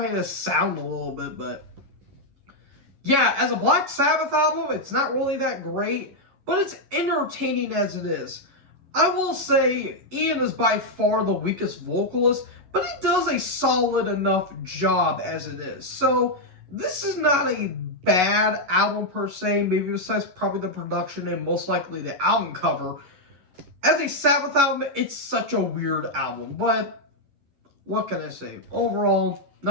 this sound a little bit, but yeah, as a Black Sabbath album, it's not really that great, but it's entertaining as it is. I will say Ian is by far the weakest vocalist, but he does a solid enough job as it is. So this is not a bad album per se, maybe besides probably the production and most likely the album cover. As a Sabbath album, it's such a weird album, but what can I say? Overall,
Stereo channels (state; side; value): late; left; 11 ms